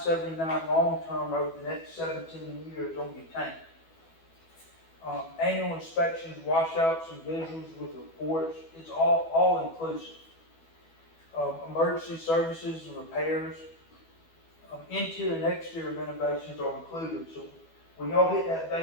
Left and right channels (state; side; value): late; right; 12 ms